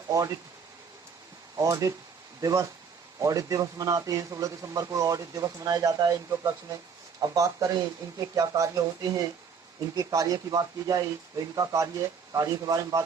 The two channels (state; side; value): quieter; left; 6.1 dB